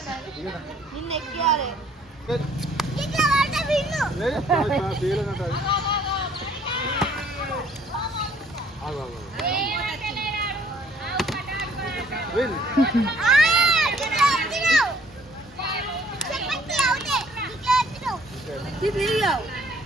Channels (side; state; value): both; normal; correlation 0.60